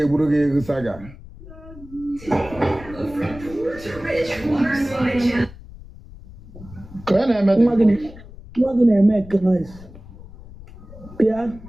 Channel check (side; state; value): left; noise; rumble, 18 dB below the sound